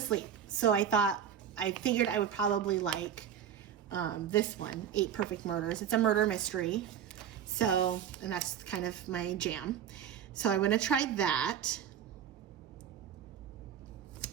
Sleep. So I figured I would probably like this one, 8 Perfect Murders. It's a murder mystery. So, and that's kind of my jam. So I'm going to try that.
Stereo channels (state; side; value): quieter; left; 8.9 dB